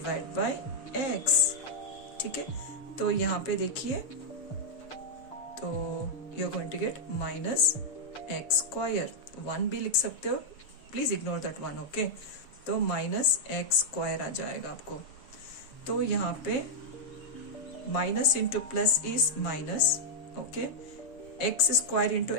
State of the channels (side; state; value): right; late; 7.2 ms